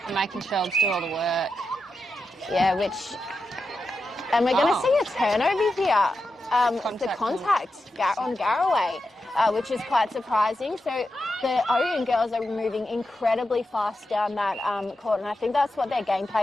and making Shelbs do all the work. Yeah, and we're going to see a turnover here. The contact on Garraway, which is quite surprising. So the Ouyen girls are moving incredibly fast down that court, and I think that's what their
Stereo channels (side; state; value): both; normal; correlation 0.88